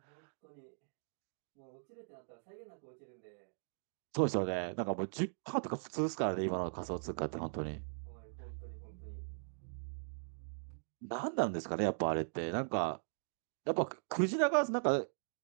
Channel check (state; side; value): silent; left; digital silence